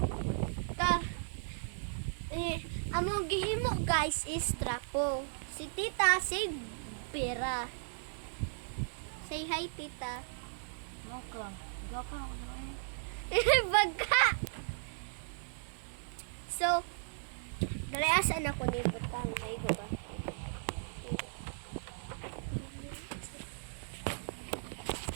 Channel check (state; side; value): silent; left; digital silence